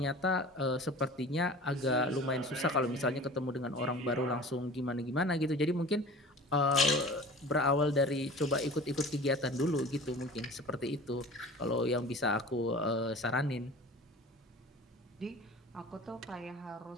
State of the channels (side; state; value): both; normal; correlation 0.41